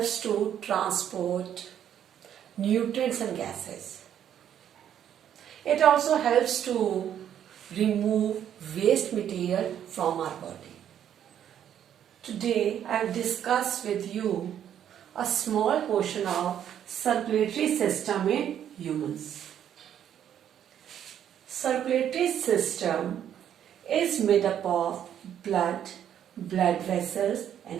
to transport nutrients and gases. It also helps to remove waste material from our body. Today I have discussed with you a small portion of circulatory system in humans. Circulatory system is made up of blood vessels and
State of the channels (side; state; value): left; quieter; 9.8 dB